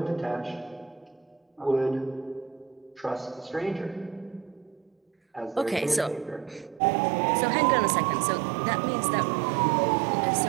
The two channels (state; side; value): drops out; left; at 6.8 s